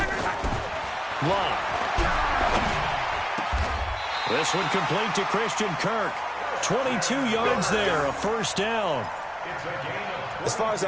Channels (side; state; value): both; identical; correlation 1.00